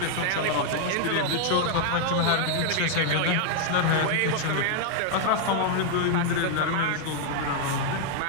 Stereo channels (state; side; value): different; both; correlation 0.00